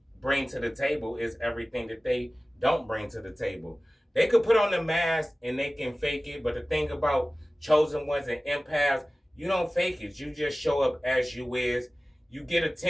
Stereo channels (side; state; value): both; normal; correlation 0.97